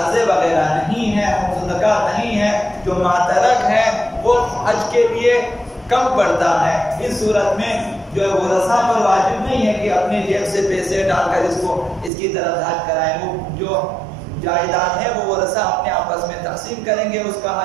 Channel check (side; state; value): left; drops out; at 12.1 s